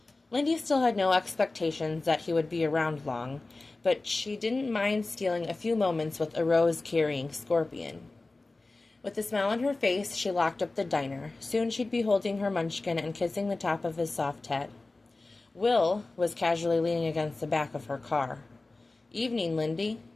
Lindy still had no expectations that he would be around long, but she didn't mind stealing a few moments with a rose-carrying Scorpion. With a smile on her face, she locked up the diner. Soon she'd be holding her munchkin and kissing the top of his soft head. Will was casually leaning against the back of her car. Evening, Lindy.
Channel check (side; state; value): right; quieter; 3.3 dB